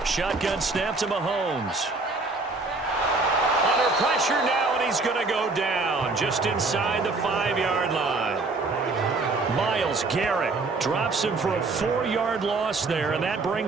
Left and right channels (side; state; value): left; quieter; 3.6 dB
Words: Shotgun snap to Mahomes. Under pressure now, and he's going to go down just inside the 5-yard line. Myles Garrett drops him for a 4-yard loss there, and that